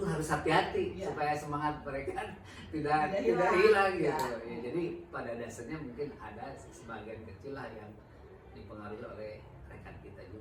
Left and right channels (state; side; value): identical; both; correlation 1.00